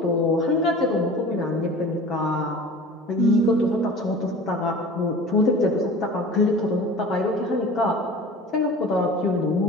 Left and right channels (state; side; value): normal; both; correlation 0.40